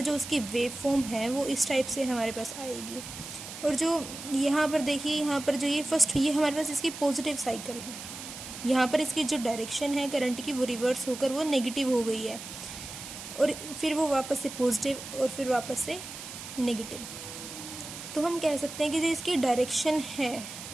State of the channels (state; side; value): noise; right; hiss, 11 dB below the sound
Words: जो उसकी वेव फॉर्म है वो इस टाइप से हमारे पास आएगी। और जो यहाँ पर देखिए, यहाँ पर जो ये हमारे पास इसकी पॉजिटिव साइकिल है। यहाँ पर इसकी जो डायरेक्शन है करंट की वो रिवर्स होकर वो नेगेटिव हो गई है, और फिर वो वापस से पॉजिटिव और फिर वापस से नेगेटिव। तो हम कह सकते हैं कि जो इसकी डायरेक्शन है